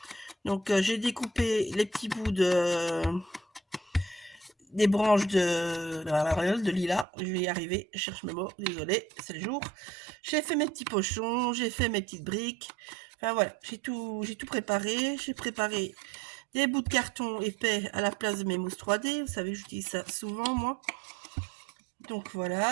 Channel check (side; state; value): left; drops out; at 7.1 s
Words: Donc j'ai découpé les petits bouts des branches de lilas. Je vais y arriver, je cherche mes mots, désolé, c'est le jour. J'ai fait mes petits pochons, j'ai fait mes petites briques. Enfin voilà, j'ai tout préparé. J'ai préparé des bouts de carton épais à la place de mes mousses 3D. Vous savez, j'utilise ça souvent moi. Donc